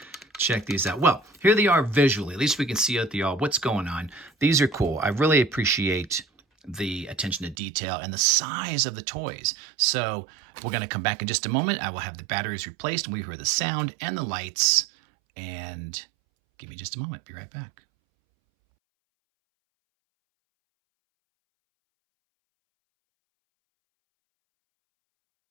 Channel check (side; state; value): left; drops out; at 7.6 s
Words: check these out. Well, here they are visually. At least we can see out the all what's going on. These are cool. I really appreciate the attention to detail and the size of the toys. So we're going to come back in just a moment. I will have the batteries replaced and we hear the sound and the lights. And give me just a moment. Be right back.